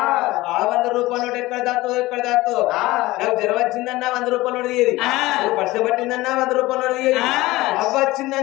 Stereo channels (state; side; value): quieter; right; 19.0 dB